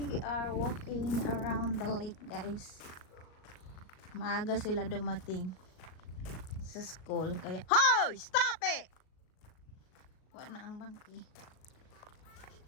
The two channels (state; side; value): late; right; 38 ms